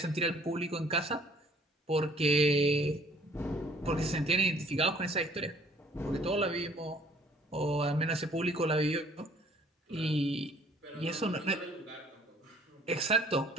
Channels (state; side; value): normal; both; correlation 0.58